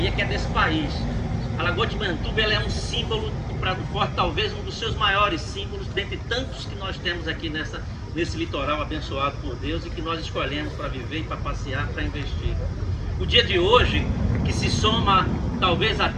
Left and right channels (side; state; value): both; identical; correlation 1.00